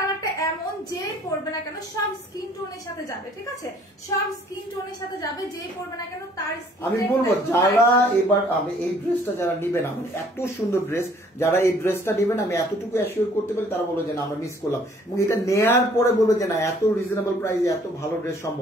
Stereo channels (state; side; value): normal; both; correlation 0.59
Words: এমন যে পরবে না কেন সব স্কিন টোনের সাথে যাবে, ঠিক আছে, সব স্কিন টোনের সাথে যাবে, যে পরবে না কেন তার আমি বলবো যারা এবার আমি এই ড্রেসটা যারা নিবেন, আমার এত সুন্দর ড্রেস, যারা এই ড্রেসটা নেবেন আমি এতটুকু অ্যাসিওর করতে পারি, তারা বলবে যে না আমরা মিস করলাম, এবং এটা নেয়ার পরে বলবে যে না এত রিজনেবল প্রাইসে এত ভালো ড্রেস